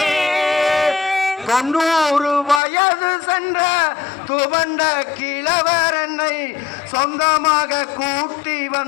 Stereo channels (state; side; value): drops out; right; at 2.6 s